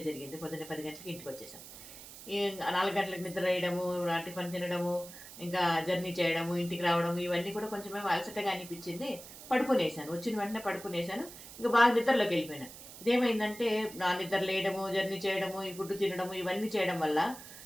జరిగింది. పొద్దున్నే 10 గంటలకి ఇంటికొచ్చేసాం. ఈ 4 గంటలకు నిద్ర వేయడము, టిఫిన్ తినడము, ఇంకా జర్నీ చేయడము, ఇంటికి రావడం ఇవన్నీ కూడా కొంచెమేమో అలసటగా అనిపిచ్చింది. పడుకునేసాను. వచ్చిన వెంటనే పడుకునేసాను. ఇంక బాగా నిద్రలోకెళ్ళిపోయాను. ఇదేమైందంటే నా నిద్ర లేయడము, జర్నీ చేయడము, ఈ ఫుడ్ తినడము ఇవన్నీ చేయడం వల్ల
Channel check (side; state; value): right; noise; hiss, 15 dB below the sound